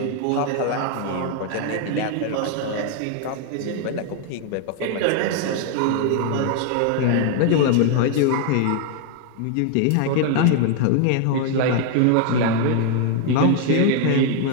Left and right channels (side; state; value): both; different; correlation 0.00